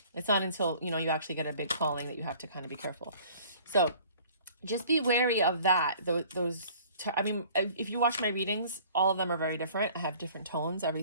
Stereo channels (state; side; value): inverted; both; correlation -0.51